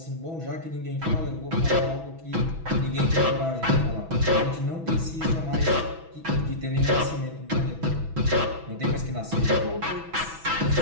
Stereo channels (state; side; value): late; left; 6.1 ms